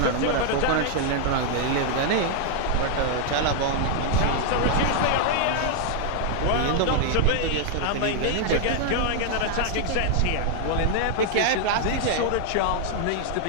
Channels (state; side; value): different; both; correlation 0.00